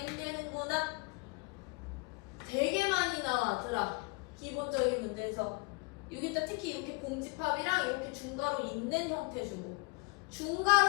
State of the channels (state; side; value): quieter; right; 27.9 dB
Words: 되는구나. 되게 많이 나와더라. 기본적인 문제에서 여기다 특히 이렇게 공집합이랑 이렇게 중괄호 있는 형태 주고,